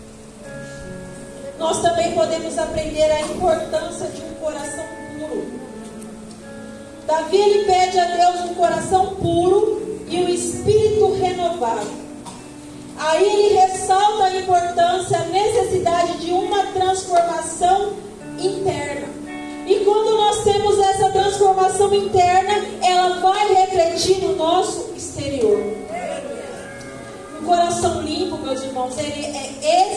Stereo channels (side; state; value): both; identical; correlation 1.00